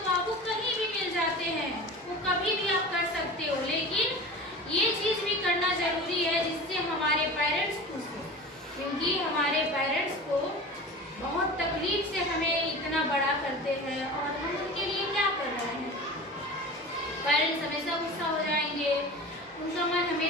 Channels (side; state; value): both; normal; correlation 0.34